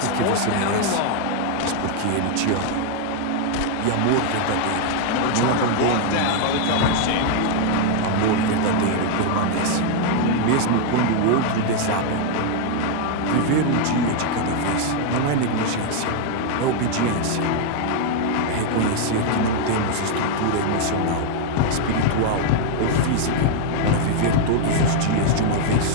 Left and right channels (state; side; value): different; both; correlation 0.00